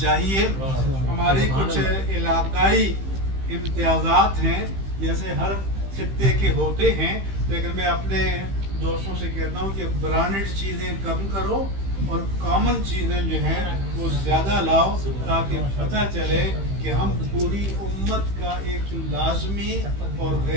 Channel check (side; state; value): left; late; 15 ms